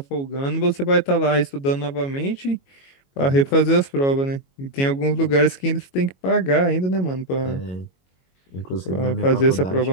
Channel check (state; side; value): late; right; 22 ms